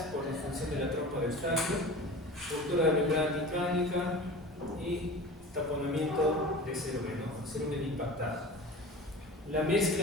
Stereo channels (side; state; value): both; normal; correlation 0.36